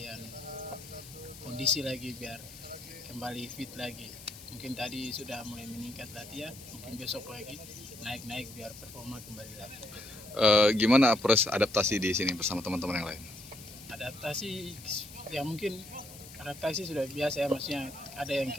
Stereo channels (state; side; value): noise; left; hiss, 16 dB below the sound